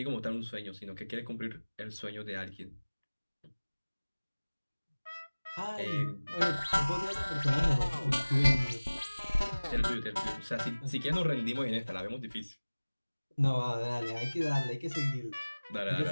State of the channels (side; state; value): both; inverted; correlation -1.00